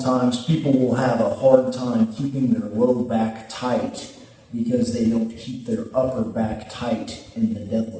people will have a hard time keeping their low back tight because they don't keep their upper back tight in the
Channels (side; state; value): both; identical; correlation 1.00